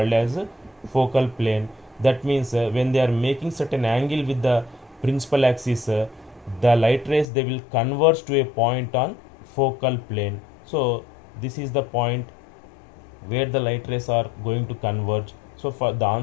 as a focal plane. That means when they are making certain angle with the principal axis, the light rays, they will converge to a point on focal plane. So this is the point where the light rays are going to converge. So for the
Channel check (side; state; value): right; drops out; at 7.2 s